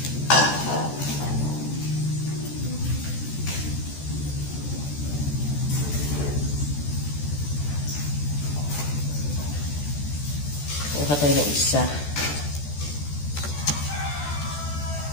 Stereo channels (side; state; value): right; late; 14 ms